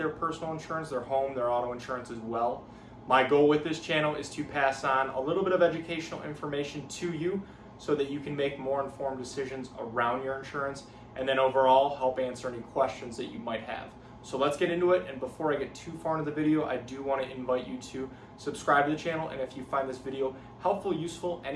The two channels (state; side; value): identical; both; correlation 1.00